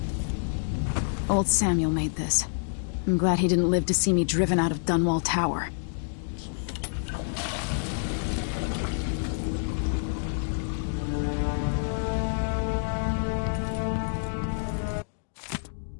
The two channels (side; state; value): right; silent; digital silence